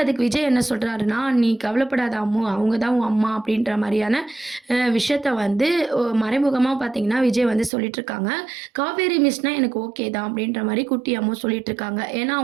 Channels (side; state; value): left; drops out; at 7.7 s